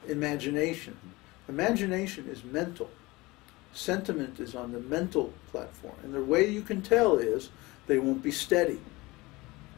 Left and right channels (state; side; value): quieter; right; 22.1 dB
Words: Imagination. Imagination is mental. Sentiment is on the mental platform. And the way you can tell is They won't be steady.